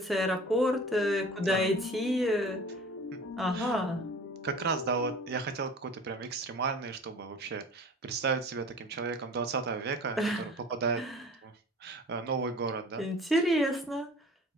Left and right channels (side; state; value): both; normal; correlation 0.42